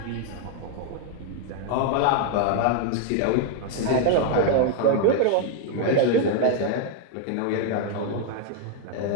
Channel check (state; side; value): different; both; correlation 0.00